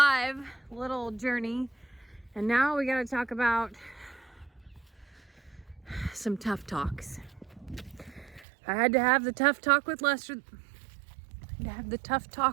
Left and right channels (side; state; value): left; drops out; at 8.5 s